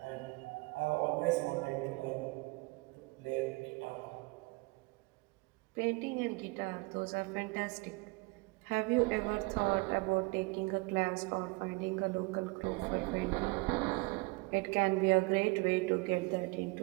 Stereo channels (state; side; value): quieter; left; 25.7 dB